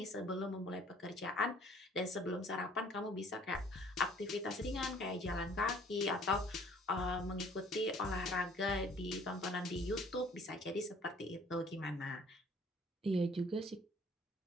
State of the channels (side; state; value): both; normal; correlation 0.56